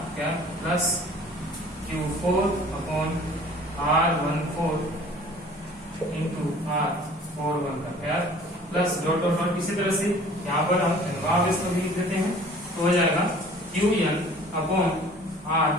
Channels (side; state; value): both; normal; correlation 0.49